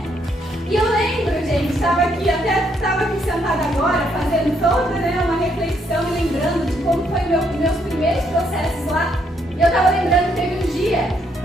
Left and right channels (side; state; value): both; normal; correlation 0.73